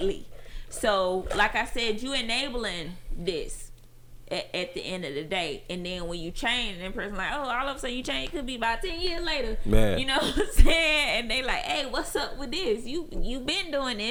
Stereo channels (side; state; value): both; identical; correlation 1.00